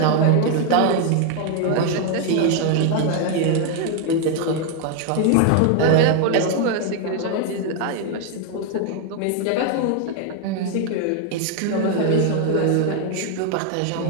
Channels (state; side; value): different; both; correlation 0.00